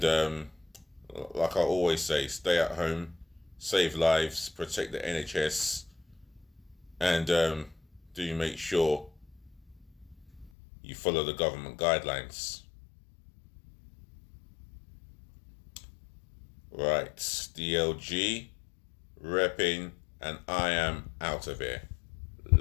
like I always say, stay at home, save lives, protect the NHS, and do make sure you follow the government guidelines. Right, DLG, REPPIN, and I am out of here.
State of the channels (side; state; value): right; drops out; at 10.5 s